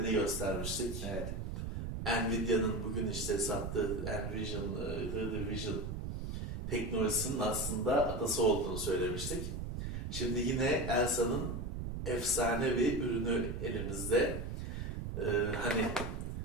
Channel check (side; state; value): right; noise; rumble, 5 dB below the sound